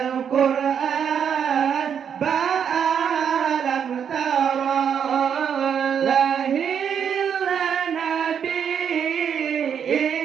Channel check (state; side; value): quieter; left; 7.8 dB